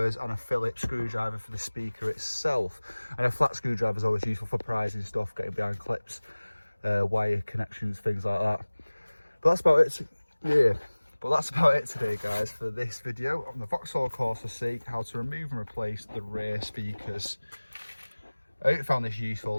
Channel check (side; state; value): both; inverted; correlation -1.00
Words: and a Phillips screwdriver for the speaker itself. And a flat screwdriver is always useful for prizing stuff, getting behind clips, wire connections, things like that. But that's about it. Yeah. But that's about it today, guys, for this video on the Vauxhall Corsa C, how to remove and replace the rear speakers. I hope you found this